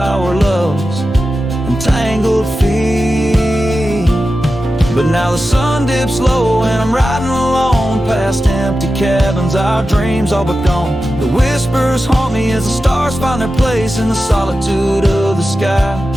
loves entangled feet. But now the sun dips low and I'm riding alone past empty cabins, our dreams all but gone. The whispers haunt me as the stars find their place in the solitude of the sky.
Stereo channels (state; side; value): normal; both; correlation 0.92